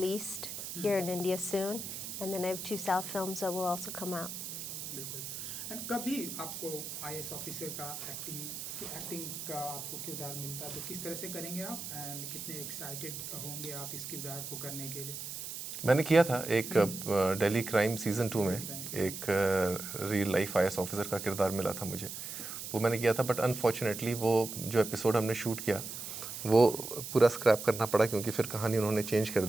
here in India soon, and then I have 2 South films that will also come out. बिल्कुल। एंड कभी आपको आईएएस ऑफिसर का एक्टिंग का आपको किरदार मिलता है तो किस तरह से करेंगे आप एंड कितने एक्साइटेड होंगे आप इस किरदार को करने के लिए? मैंने किया था एक दिल्ली क्राइम सीज़न 2 में एक रियल लाइफ आईएएस ऑफिसर का किरदार मिला था मुझे, वो मैंने किया था। बट अनफॉर्चुनेटली वो जो एपिसोड हमने शूट किया वो पूरा स्क्रैप करना पड़ा क्योंकि फिर कहानी उन्होंने चेंज कर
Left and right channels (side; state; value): right; noise; hiss, 7 dB below the sound